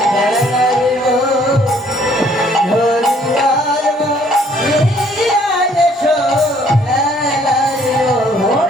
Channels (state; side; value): normal; both; correlation 0.62